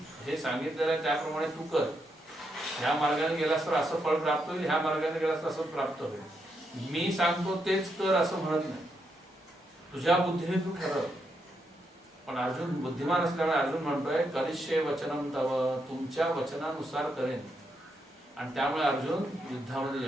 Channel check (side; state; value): both; normal; correlation 0.81